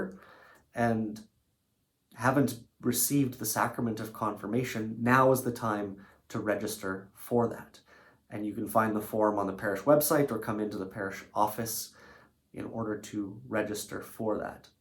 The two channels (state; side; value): identical; both; correlation 1.00